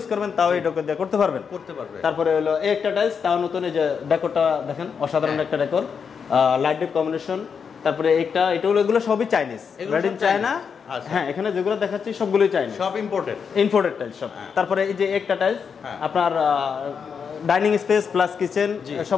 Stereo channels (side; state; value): right; quieter; 6.4 dB